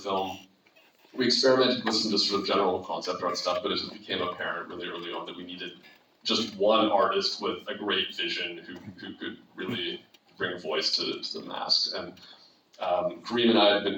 We experimented with some just sort of general concept art stuff, but it just became apparent really early on that we needed just one artist with a great vision who could really bring voice to the masks. And Kareem and I had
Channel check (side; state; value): both; identical; correlation 1.00